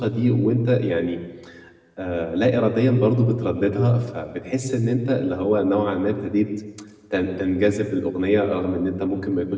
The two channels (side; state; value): both; identical; correlation 1.00